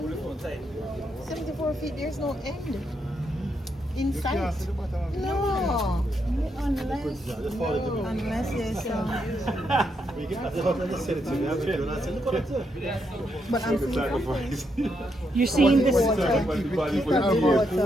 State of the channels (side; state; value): both; normal; correlation 0.79